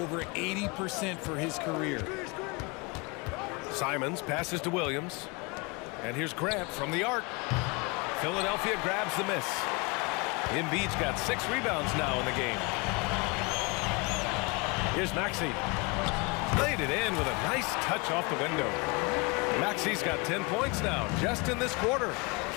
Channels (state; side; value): quieter; right; 28.3 dB